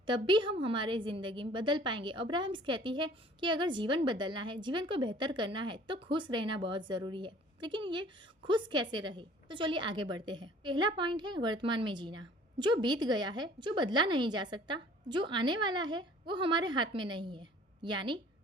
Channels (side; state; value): both; normal; correlation 0.51